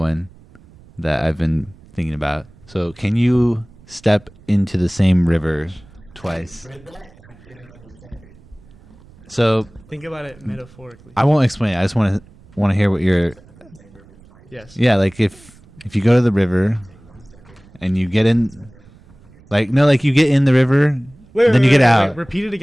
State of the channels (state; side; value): noise; right; rumble, 25 dB below the sound